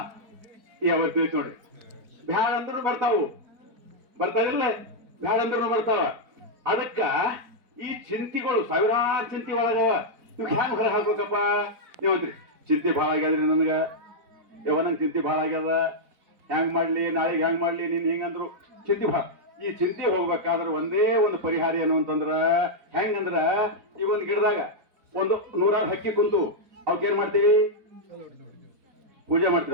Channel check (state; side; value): late; left; 4.4 ms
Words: ಯಾವ ತಿಳಿತು ನೋಡ್ರಿ. ಬ್ಯಾಡ ಅಂದ್ರೂ ಬರ್ತಾವಿಲ್ಲ, ಬ್ಯಾಡ ಅಂದ್ರೂ ಬರ್ತಾವ. ಅದಕ್ಕ ಈ ಚಿಂತೆಗಳು ಸಾವಿರಾರು ಚಿಂತೆ ಒಳಗವ. ನೀವು ಹ್ಯಾಂಗ ಹೊರ ಹಾಕ್ಬೇಕಪ್ಪ? ನೀವಂತ್ರಿ ಚಿಂತೆ ಭಾಳ ಆಗ್ಯಾದ್ರಿ ನನಗ, ನಂಗೆ ಚಿಂತೆ ಭಾಳ ಆಗ್ಯದ, ಹ್ಯಾಂಗ್ ಮಾಡ್ಲಿ, ನಾಳೆಗೆ ಹ್ಯಾಂಗ್ ಮಾಡ್ಲಿ, ನೀನ್ ಹಿಂಗಂದ್ರು ಚಿಂತೆ ಭಾಳ. ಈ ಚಿಂತೆ ಹೋಗ್ಬೇಕಾದ್ರೆ ಒಂದೇ ಒಂದು ಪರಿಹಾರ ಏನು ಅಂತಂದ್ರ ಹೆಂಗಂದ್ರ, ಈ ಒಂದು ಗಿಡದಾಗ ಒಂದು 100 ಹಕ್ಕಿ ಕುಂತು ಅವಕ್ಕೇನ್ ಮಾಡ್ತೀವಿ? ಪೂಜೆ